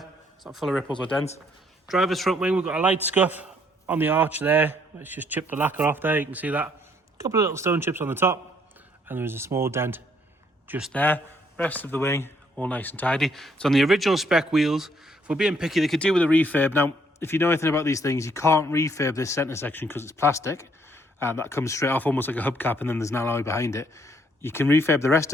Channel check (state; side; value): normal; both; correlation 0.68